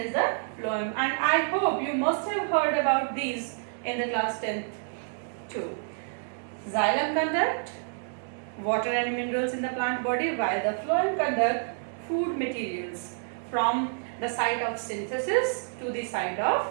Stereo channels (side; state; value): left; silent; digital silence